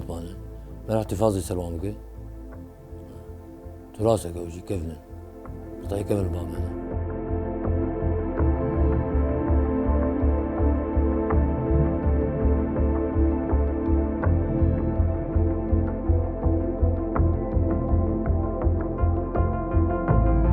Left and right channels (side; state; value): both; identical; correlation 1.00